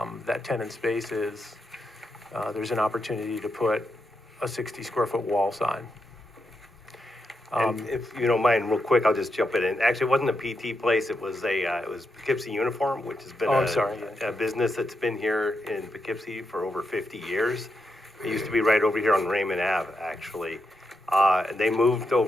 that tenant space is, there's an opportunity to put a 60 square foot wall sign. And if you don't mind, real quick, I'll just jump in. Actually, it wasn't a PT place. It was Poughkeepsie Uniform, which has been a business that's been here in Poughkeepsie for over 50 years. It used to be right over here on Raymond Ave, actually. And they moved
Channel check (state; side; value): normal; both; correlation 0.84